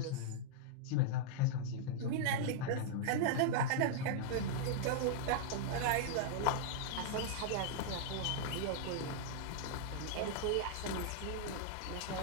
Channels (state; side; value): different; both; correlation -0.01